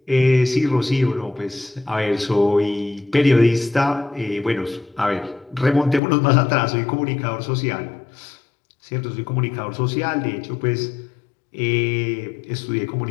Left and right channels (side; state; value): right; drops out; at 6.0 s